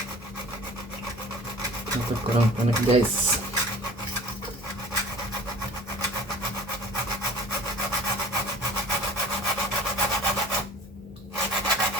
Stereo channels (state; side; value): normal; both; correlation 0.44